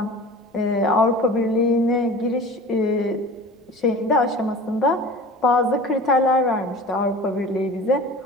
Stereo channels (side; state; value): both; normal; correlation 0.39